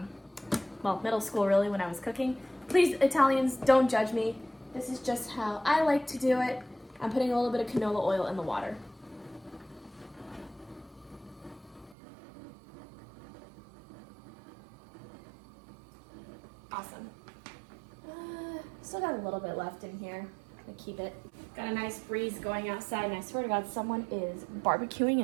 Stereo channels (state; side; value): drops out; left; at 12.0 s